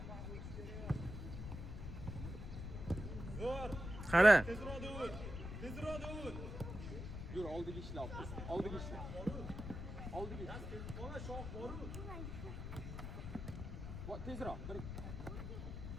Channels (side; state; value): left; noise; rumble, 6 dB below the sound